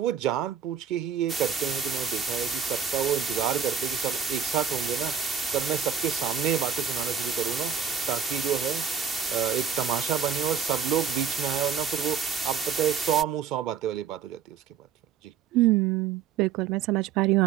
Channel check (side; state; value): left; quieter; 7.5 dB